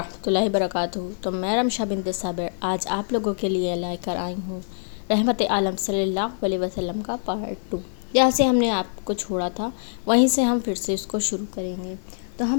اللہ وبرکاتہ۔ تو میں رمشا بنت صابر آج آپ لوگوں کے لیے لے کر آئی ہوں رحمت عالم صلی اللہ علیہ وسلم کا پارٹ 2۔ جہاں سے ہم نے آپ کو چھوڑا تھا وہیں سے ہم پھر سے اس کو شروع کریں گے۔ تو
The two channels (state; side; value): silent; right; 62 dB below the other